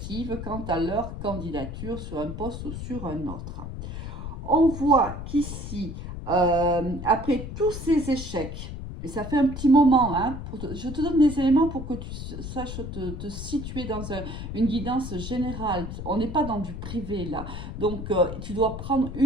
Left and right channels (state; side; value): noise; left; rumble, 7 dB below the sound